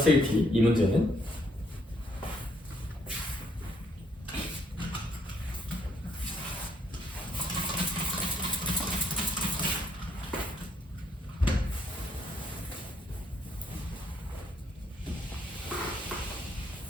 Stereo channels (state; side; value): normal; both; correlation 0.71